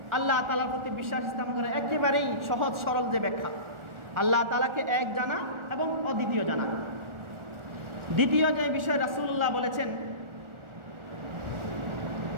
আল্লাহ তাআলার প্রতি বিশ্বাস স্থাপন করে একেবারেই সহজ সরল যে ব্যাখ্যা, আল্লাহ তাআলাকে এক জানা এবং অদ্বিতীয় জানা। দ্বিতীয় যে বিষয় রাসূলুল্লাহ বলেছেন,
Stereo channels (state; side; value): late; left; 1.4 ms